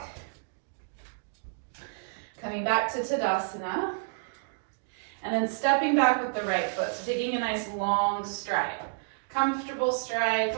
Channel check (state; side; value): silent; left; digital silence